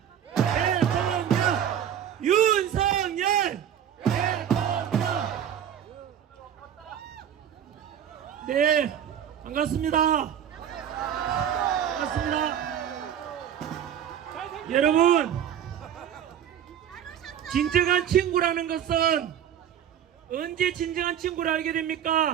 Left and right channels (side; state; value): left; quieter; 9.5 dB